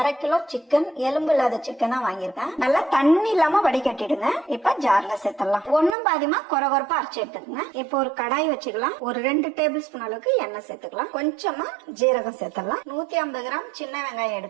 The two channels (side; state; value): left; drops out; at 6.0 s